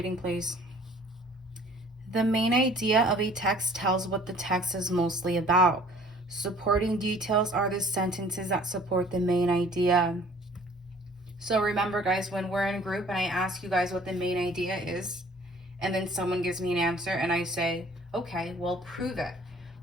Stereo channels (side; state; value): both; normal; correlation 0.52